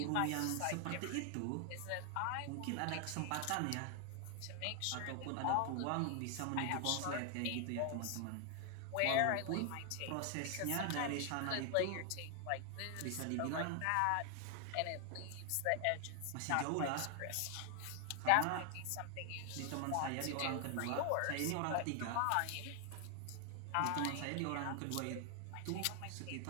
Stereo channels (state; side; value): different; both; correlation 0.00